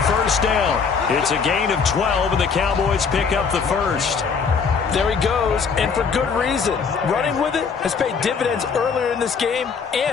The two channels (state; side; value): quieter; right; 5.7 dB